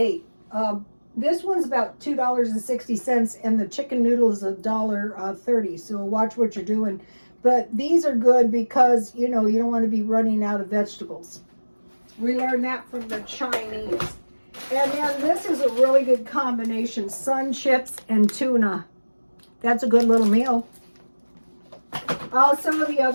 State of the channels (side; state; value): both; inverted; correlation -1.00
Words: This one's about $2.60 and the chicken noodle is $1.30. So watch what you're doing. But these are good because, you don't want to be running out of vegetables. We learned that from the Chinese. And then this is a really good combination, sun chips and tuna. That's a good little meal. Also, the